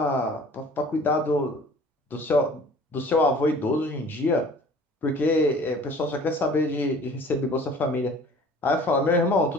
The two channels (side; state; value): both; normal; correlation 0.48